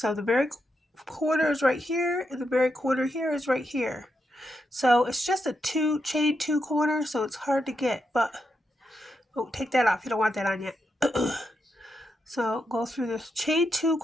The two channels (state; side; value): normal; both; correlation 0.84